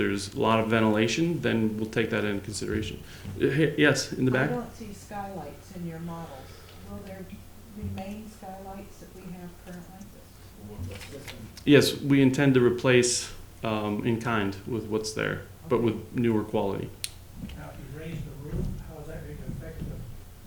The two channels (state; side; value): identical; both; correlation 1.00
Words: a lot of ventilation, then we'll take that into consideration. Yes, in the back? I don't see skylights in your models. Will there remain skylights that we have currently? Yes, we intend to replace in kind with what's there, but with newer quality. Now, if you raise the roof, how is that going to affect